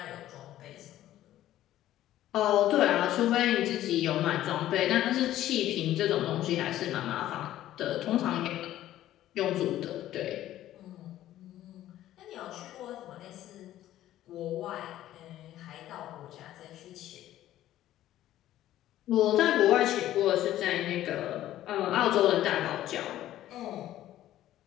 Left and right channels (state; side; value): quieter; right; 13.4 dB